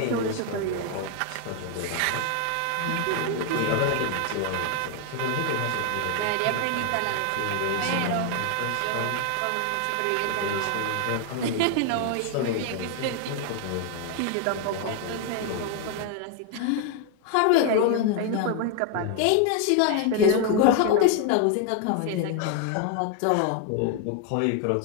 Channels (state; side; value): different; both; correlation 0.00